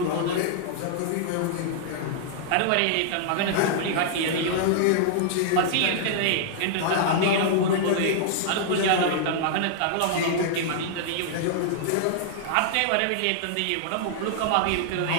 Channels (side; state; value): both; different; correlation -0.01